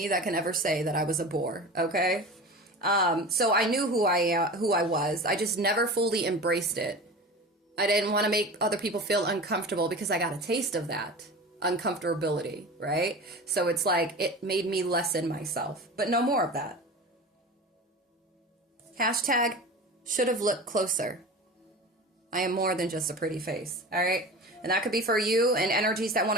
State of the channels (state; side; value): normal; both; correlation 0.33